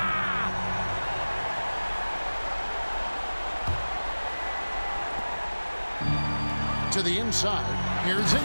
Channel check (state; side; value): inverted; both; correlation -1.00